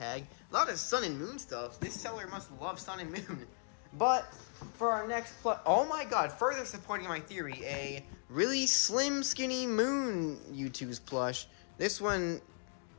A lot of sun and moon stuff. This seller must love sun and moon. But for our next oh my god, further supporting my theory, a really slim, skinny moon Youtooz plush. This one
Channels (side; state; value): right; silent; 53 dB below the other